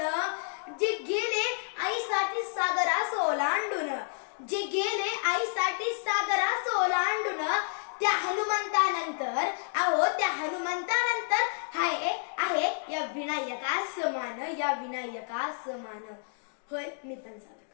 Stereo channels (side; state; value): right; silent; digital silence